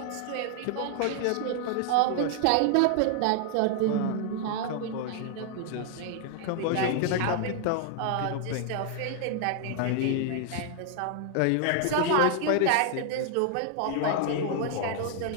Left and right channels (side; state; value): both; different; correlation 0.00